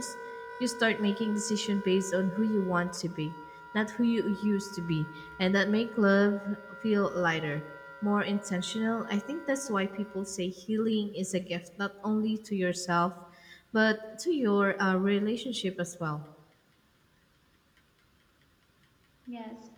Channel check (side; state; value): both; identical; correlation 1.00